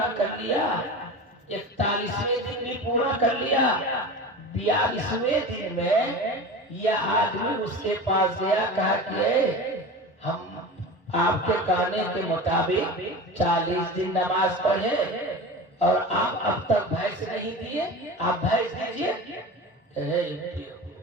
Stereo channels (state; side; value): normal; both; correlation 0.31